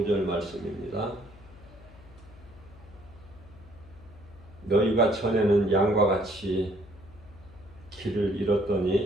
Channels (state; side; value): noise; left; hum, 21 dB below the sound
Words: 말씀입니다. 너희가 전에는 양과 같이 길을